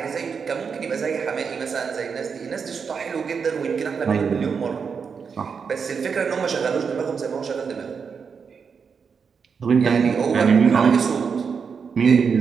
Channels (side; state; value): left; quieter; 6.0 dB